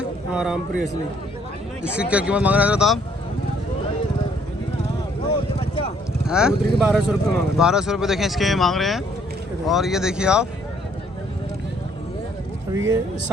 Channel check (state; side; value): normal; both; correlation 0.65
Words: हाँ रामपुरी असली। इसकी क्या कीमत मांग रहे हैं आप? हैं? कबूतरी के 1200 रुपये मांग रहे 1200 रुपये देखें इसके मांग रहे हैं। और ये देखिए आप, अभी ये